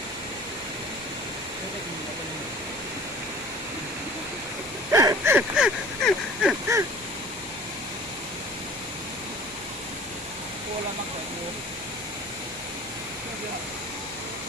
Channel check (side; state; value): left; noise; hum, 23 dB below the sound